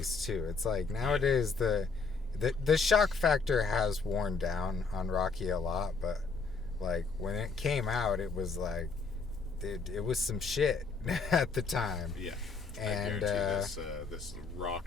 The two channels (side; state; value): right; quieter; 4.5 dB